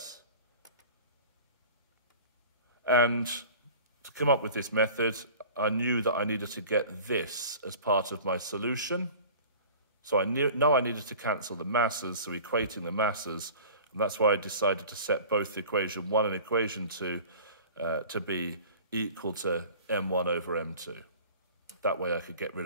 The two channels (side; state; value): both; inverted; correlation -0.42